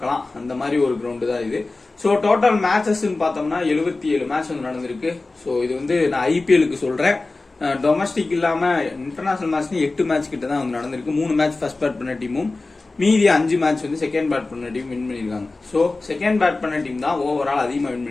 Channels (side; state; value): right; quieter; 3.4 dB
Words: அந்த மாதிரி ஒரு கிரவுண்டு தான் இது. ஸோ டோட்டல் மேட்சஸ் பார்த்தோம்னா 77 மேட்ச் வந்து நடந்திருக்கு. ஸோ இது வந்து நான் IPLக்கு சொல்றேன். டொமஸ்டிக் இல்லாம இன்டர்நேஷனல் மேட்ச் 8 மேட்ச் கிட்ட தான் வந்து நடந்திருக்கு. 3 மேட்ச் ஃபர்ஸ்ட் பேட் பண்ண டீமும் மீதி 5 மேட்ச் வந்து செகண்ட் பேட் பண்ண டீம் வின் பண்ணிருக்காங்க. ஸோ செகண்ட் பேட் பண்ண டீம் தான் ஓவரால் அதிகமாக வின்